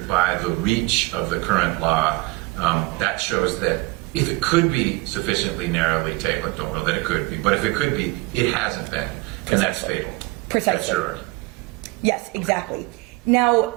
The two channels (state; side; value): quieter; left; 23.7 dB